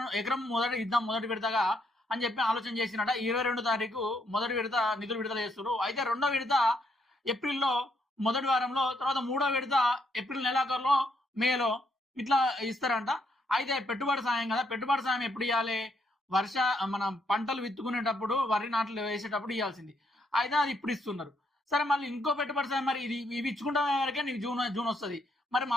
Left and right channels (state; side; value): normal; both; correlation 0.74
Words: ఎకరం మొదటి విడతగా అని చెప్పి ఆలోచన చేసినట. 22 తారీఖు మొదటి విడత నిధులు విడుదల చేస్తున్నారు. అయితే రెండో విడత ఏప్రిల్లో మొదటి వారంలో, తర్వాత మూడో విడత ఏప్రిల్ నెలాఖరులో, మేలో ఇట్లా ఇస్తారంట. అయితే పెట్టుబడి సాయం కదా, పెట్టుబడి సాయం ఎప్పుడు ఇవ్వాలి, మన పంటలు విత్తుకునేటప్పుడు, వరి నాట్లు వేసేటప్పుడు ఇవ్వాల్సింది. అయితే అది ఇప్పుడు ఇస్తున్నారు. సరే, మళ్ళీ ఇంకో పెట్టుబడి సాయం మరి ఇవి ఇచ్చుకుంటే వరకే నీకు జూన్ వస్తుంది. మరి